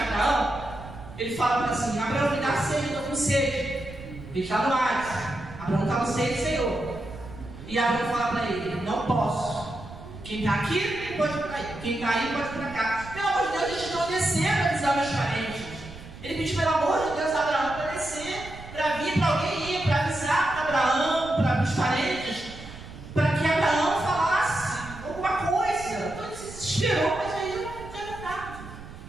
Abraão, ele fala assim: Abraão, me dá sede, eu estou com sede. Ele está no Hades. Abraão está no sede, Senhor. E Abraão fala para ele: não posso. Quem está aqui pode ir para aí. Quem está aí pode ir para cá. Pelo amor de Deus, eles estão descendo para avisar meus parentes. Ele pediu, pelo amor de Deus, a Abraão para descer, para vir para alguém ir, para avisar para Abraão, para os parentes, para que Abraão falasse alguma coisa. Então ele se desesperou, mas aí já era tarde.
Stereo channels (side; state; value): right; noise; rumble, 15 dB below the sound